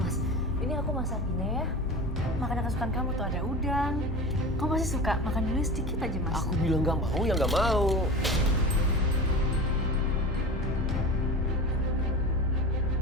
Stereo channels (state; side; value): normal; both; correlation 0.31